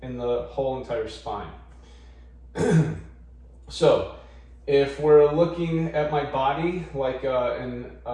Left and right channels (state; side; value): identical; both; correlation 1.00